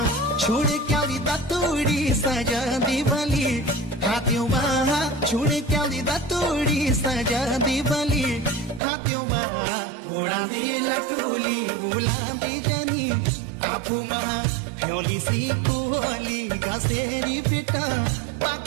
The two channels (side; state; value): left; drops out; at 8.8 s